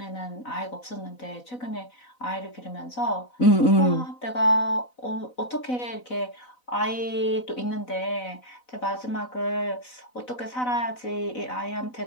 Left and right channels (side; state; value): right; late; 4.0 ms